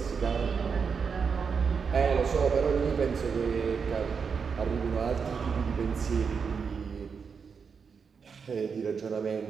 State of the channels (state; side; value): quieter; left; 5.9 dB